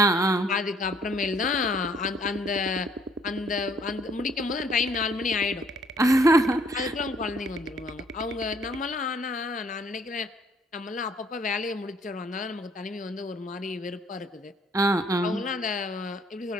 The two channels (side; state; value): both; normal; correlation 0.63